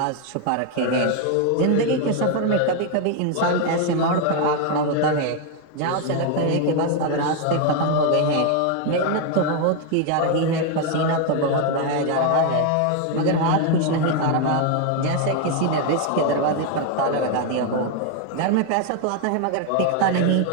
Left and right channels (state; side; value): different; both; correlation 0.01